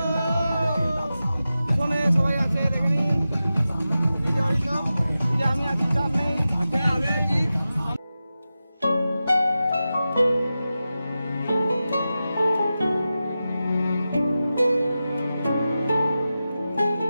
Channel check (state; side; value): inverted; both; correlation -0.93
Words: চলে সবাই আছে দেখে নিন। এই যে অরিন্দম, এই যে আমি আছি, চাপ নেই। আচ্ছা আমি আছি।